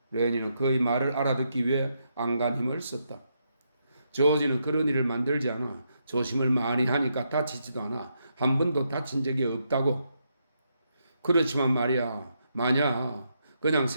레니는 그의 말을 알아듣기 위해 안간 힘을 썼다. 조지는 그런 일을 만들지 않아. 조심을 많이 하니까 다치지도 않아. 한 번도 다친 적이 없다고. 그렇지만 말이야. 만약 그냥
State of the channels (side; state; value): both; inverted; correlation -0.80